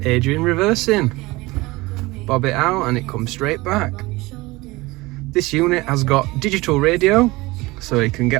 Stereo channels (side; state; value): left; quieter; 21.4 dB